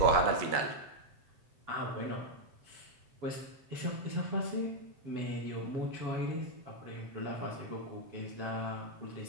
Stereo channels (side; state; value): left; late; 7.7 ms